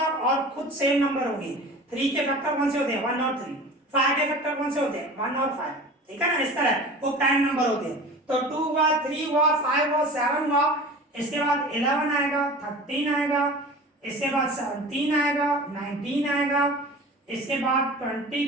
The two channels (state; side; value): normal; both; correlation 0.37